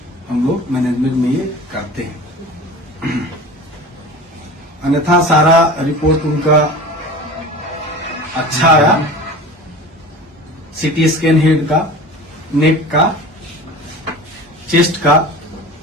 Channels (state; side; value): normal; both; correlation 0.36